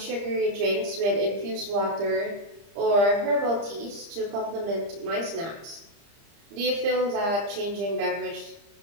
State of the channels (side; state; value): left; late; 30 ms